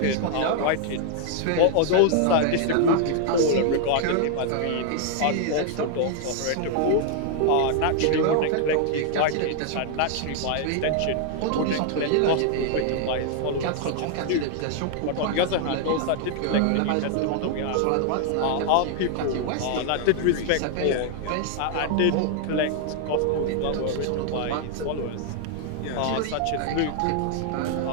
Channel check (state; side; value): different; both; correlation 0.00